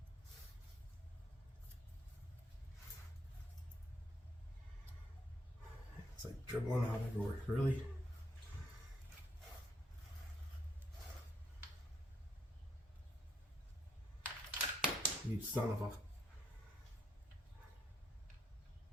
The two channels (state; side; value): normal; both; correlation 0.73